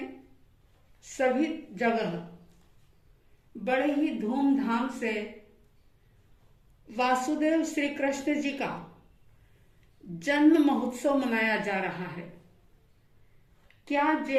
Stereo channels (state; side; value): identical; both; correlation 1.00